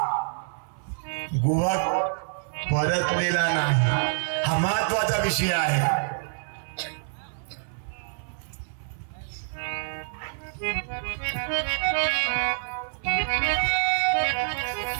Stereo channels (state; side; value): silent; left; 58 dB below the other